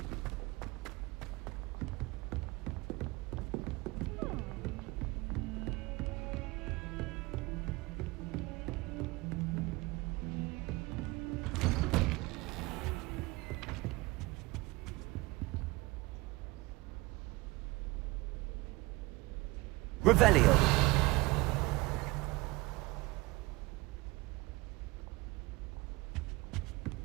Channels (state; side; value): quieter; left; 22.5 dB